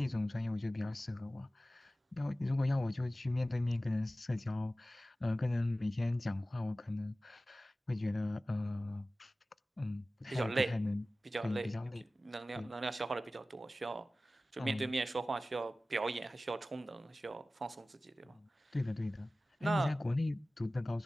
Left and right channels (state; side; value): normal; both; correlation 0.96